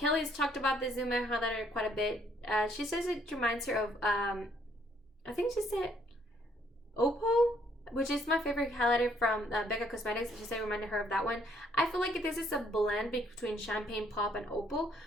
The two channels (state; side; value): normal; both; correlation 0.67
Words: talked about the Zuma Highlighter quite a bit. She says it reminds her of, I think she said Opal, which is my favorite highlighter from Becca Cosmetics. She said it reminded her of that one. I feel like this is a blend between Champagne Pop and Opal,